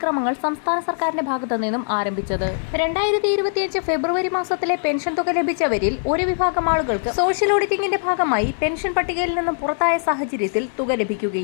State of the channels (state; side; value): silent; right; digital silence